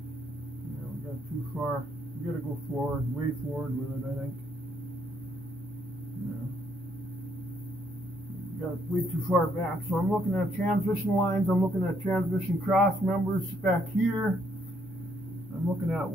Too far. You gotta go forward, way forward with it, I think. Yeah. Got way too far back. So I'm looking at transmission lines, I'm looking at transmission cross members back here. I'm looking at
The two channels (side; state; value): both; normal; correlation 0.71